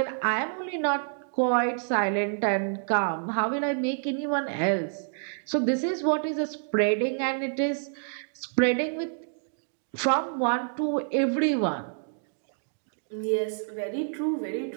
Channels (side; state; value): left; silent; digital silence